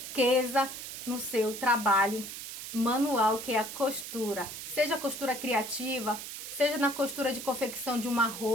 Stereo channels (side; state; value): right; noise; hiss, 9 dB below the sound